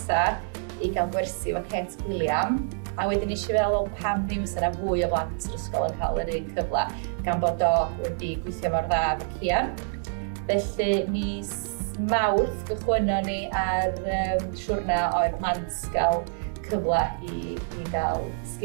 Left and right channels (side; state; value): left; silent; digital silence